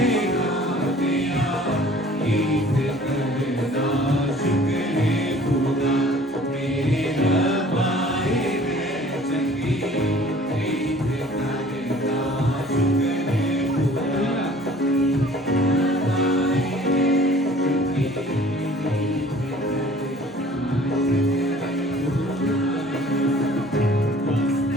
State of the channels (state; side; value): normal; both; correlation 0.51